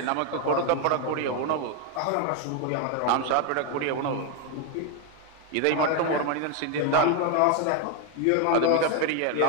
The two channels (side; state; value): both; different; correlation 0.01